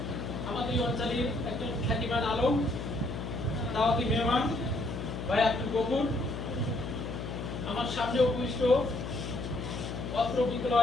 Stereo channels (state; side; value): noise; left; hum, 6 dB below the sound